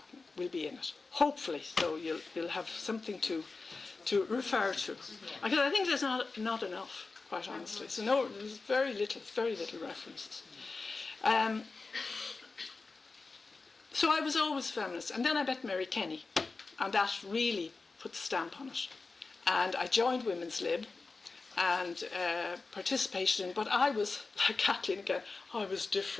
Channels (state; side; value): quieter; right; 4.0 dB